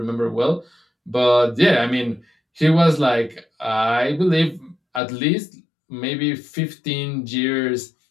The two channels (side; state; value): right; drops out; at 5.0 s